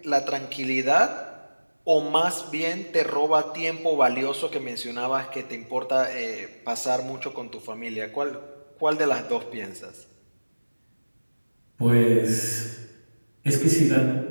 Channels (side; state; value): both; inverted; correlation -1.00